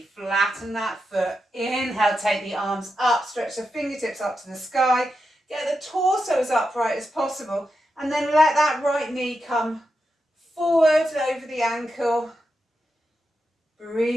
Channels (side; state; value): both; normal; correlation 0.88